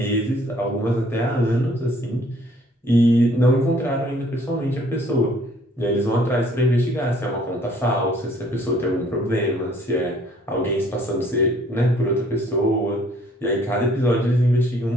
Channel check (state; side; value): normal; both; correlation 0.60